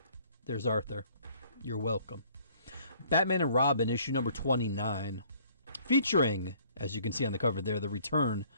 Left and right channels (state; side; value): inverted; both; correlation -0.58